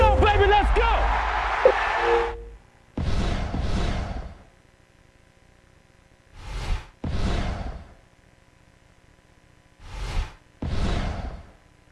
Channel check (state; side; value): identical; both; correlation 1.00